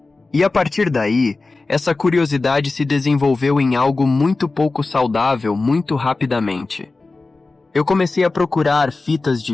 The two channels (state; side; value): quieter; right; 3.6 dB